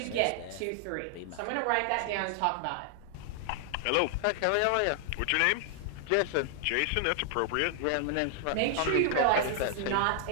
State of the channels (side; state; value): both; different; correlation 0.00